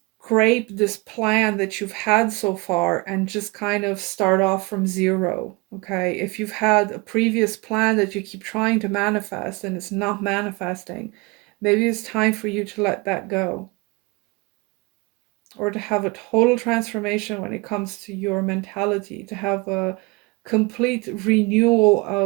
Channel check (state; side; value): quieter; left; 25.5 dB